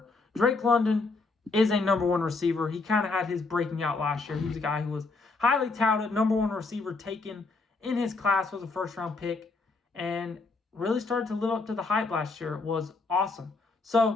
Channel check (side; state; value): right; quieter; 3.8 dB